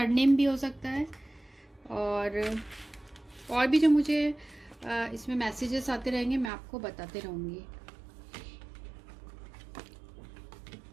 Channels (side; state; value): left; drops out; at 6.5 s